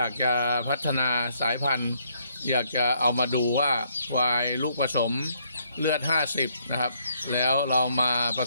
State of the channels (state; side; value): inverted; both; correlation -0.70